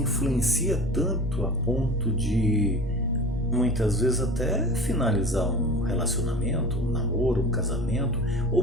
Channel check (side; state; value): both; normal; correlation 0.36